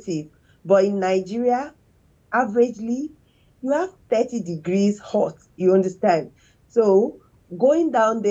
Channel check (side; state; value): both; identical; correlation 1.00